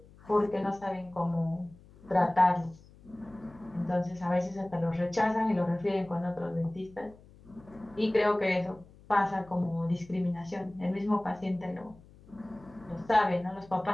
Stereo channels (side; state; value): left; noise; hum, 24 dB below the sound